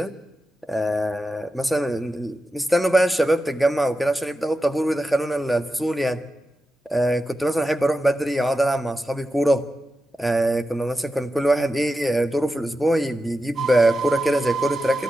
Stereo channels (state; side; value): normal; both; correlation 0.90